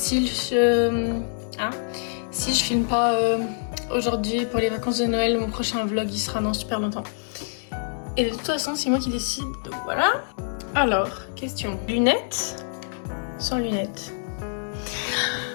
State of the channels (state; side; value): silent; right; 61 dB below the other